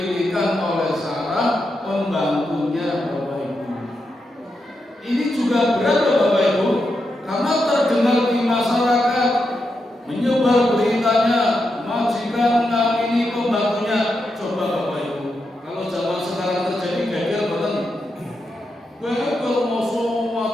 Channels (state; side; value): normal; both; correlation 0.85